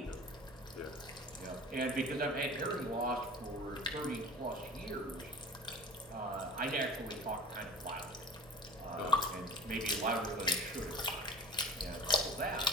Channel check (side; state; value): both; normal; correlation 0.40